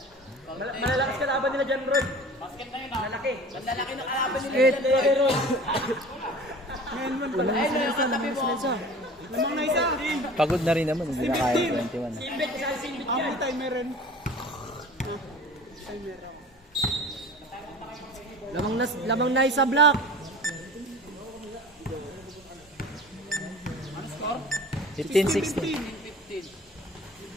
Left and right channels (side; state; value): both; normal; correlation 0.41